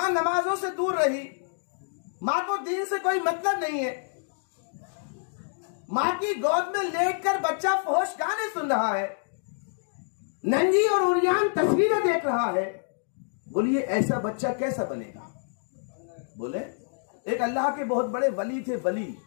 نمازوں سے دور رہی، ماں کو دین سے کوئی مطلب نہیں ہے، ماں کی گود میں لیٹ کر بچہ فحش گانے سن رہا ہے، ننگی اور عریان تصویریں دیکھ رہا ہے۔ بولیے ایسا بچہ کیسا بنے گا؟ بولے، ایک اللہ کے بہت بڑے ولی تھے، ولی،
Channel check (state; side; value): silent; right; digital silence